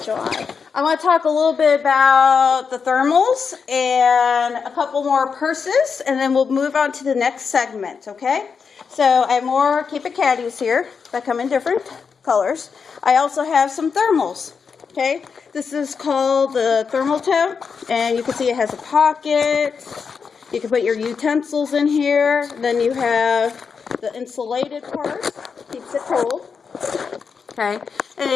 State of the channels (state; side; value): quieter; right; 5.8 dB